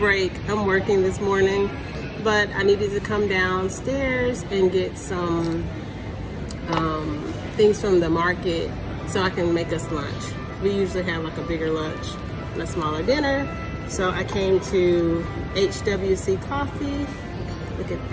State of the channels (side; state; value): both; identical; correlation 1.00